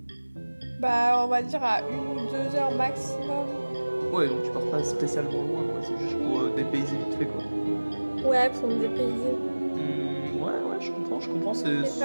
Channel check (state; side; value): inverted; both; correlation -1.00